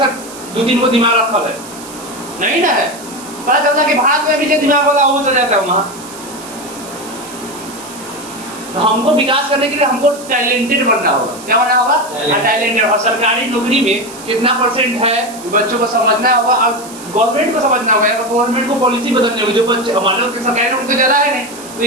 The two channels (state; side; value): noise; right; hiss, 16 dB below the sound